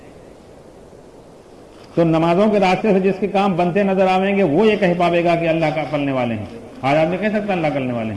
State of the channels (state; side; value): identical; both; correlation 1.00